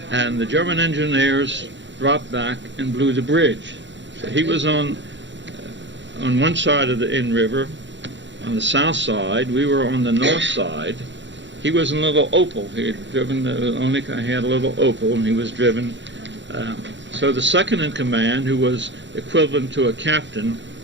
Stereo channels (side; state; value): left; late; 0.53 ms